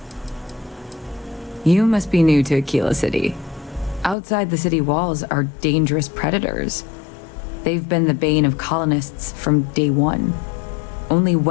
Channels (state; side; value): drops out; right; at 4.2 s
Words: You must be new to Aquila City. Outside the city walls are dangerous predators. They've been the bane of colonists from day one. Only